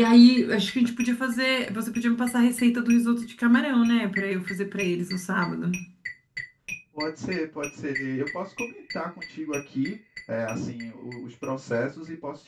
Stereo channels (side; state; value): both; identical; correlation 1.00